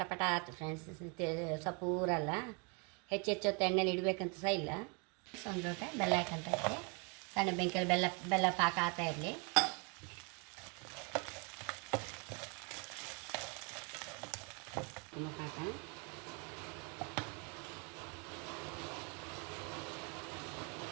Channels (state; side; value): quieter; left; 32.3 dB